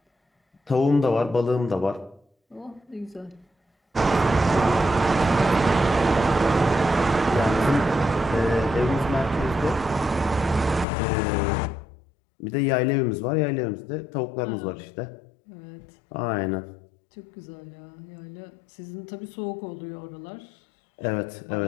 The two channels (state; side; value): drops out; right; at 10.9 s